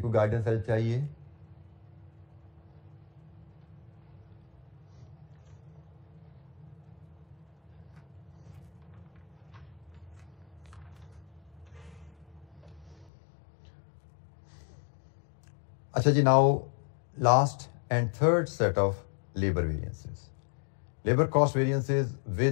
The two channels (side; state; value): right; drops out; at 13.1 s